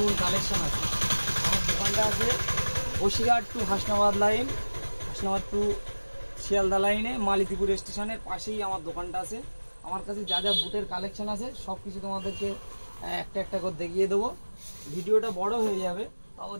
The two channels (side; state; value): both; inverted; correlation -1.00